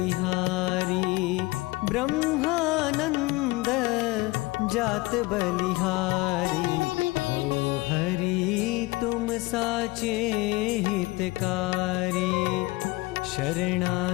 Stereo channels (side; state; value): right; quieter; 21.8 dB